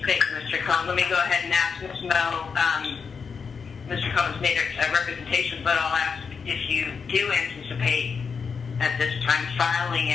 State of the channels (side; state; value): right; quieter; 5.7 dB